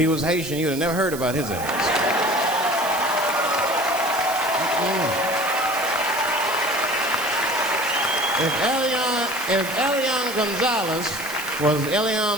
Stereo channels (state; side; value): noise; right; hiss, 11 dB below the sound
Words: was Haitian, you'd have never heard about his ass. If Elian Gonzalez was